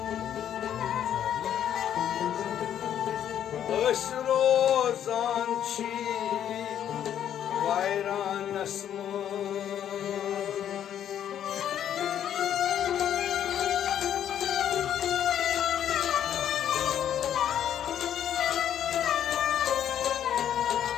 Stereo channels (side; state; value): right; quieter; 10.1 dB